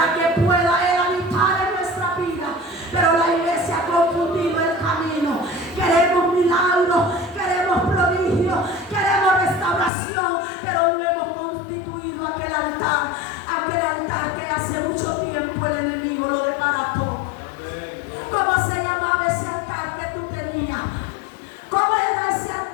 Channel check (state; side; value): drops out; right; at 9.9 s